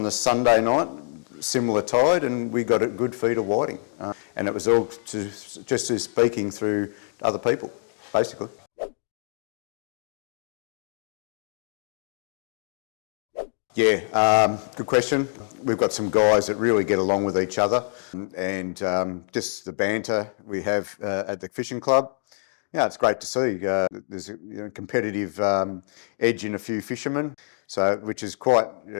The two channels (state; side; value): silent; right; digital silence